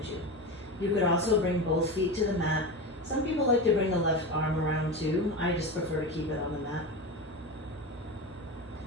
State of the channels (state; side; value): normal; both; correlation 0.23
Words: you. You could also bring both feet to the mat. Some people like to bring the left arm around too. I just prefer to keep it on the mat.